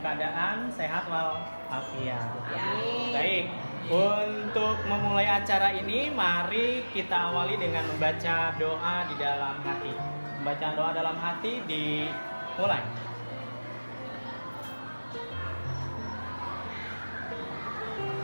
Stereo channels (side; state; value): both; inverted; correlation -1.00